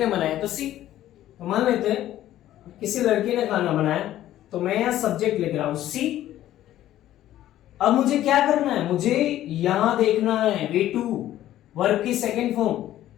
बनाया तो सी। तो मान लेते हैं किसी लड़की ने खाना बनाया, तो मैं यहां सब्जेक्ट लिख रहा हूं सी। अब मुझे क्या करना है? मुझे यहां देखना है V2 वर्ब की सेकंड फॉर्म।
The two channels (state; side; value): quieter; right; 13.2 dB